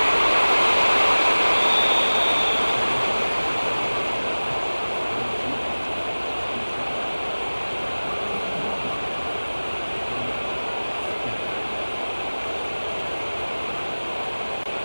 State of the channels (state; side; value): inverted; both; correlation -1.00